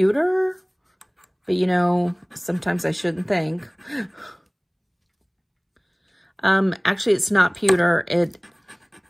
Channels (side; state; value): both; identical; correlation 1.00